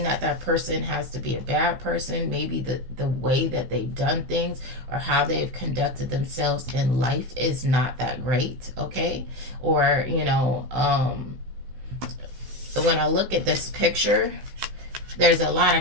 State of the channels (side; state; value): left; late; 16 ms